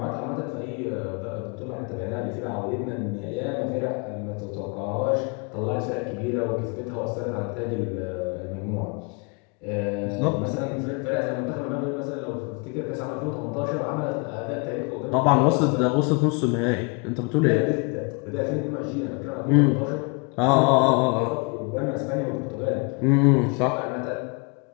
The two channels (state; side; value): quieter; right; 32.9 dB